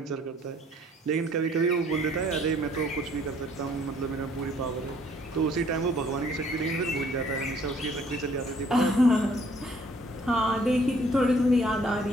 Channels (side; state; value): both; normal; correlation 0.61